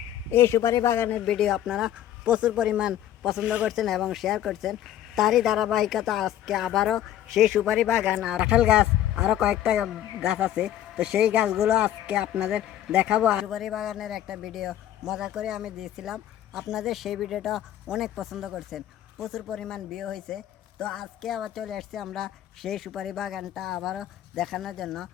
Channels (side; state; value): right; quieter; 11.8 dB